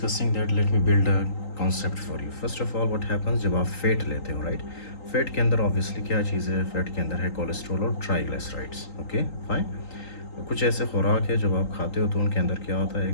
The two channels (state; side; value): late; right; 3.8 ms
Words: that, let me build a concept for you. First of all, what happens जब आप fat लेते हो, right? Fat के अंदर obviously क्या चीज़ है? Fat के अंदर है कोलेस्ट्रॉल और ट्राइग्लिसराइड्स. Okay, fine. कुछ ऐसे खुराक है जब आप खाते हो तो उनके अंदर क्या होता है,